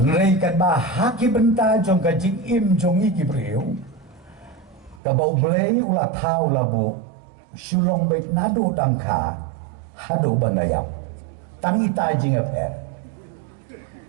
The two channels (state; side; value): drops out; left; at 5.0 s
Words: Reikan bah haki benta jong ka jing im jong iki priu ka bau blei ulah tau labu sulong baik nado tangka hado bandayap tangi ta jing aper